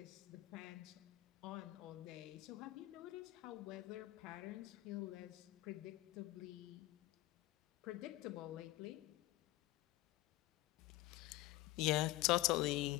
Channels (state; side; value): quieter; right; 17.9 dB